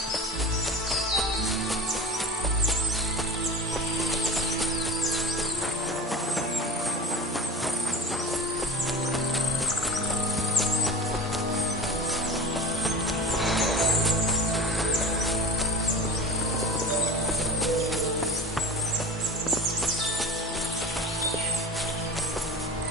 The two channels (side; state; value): both; normal; correlation 0.35